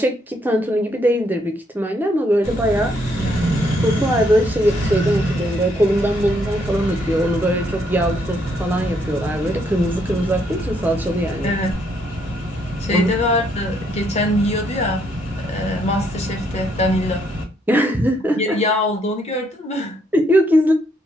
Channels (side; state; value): both; normal; correlation 0.72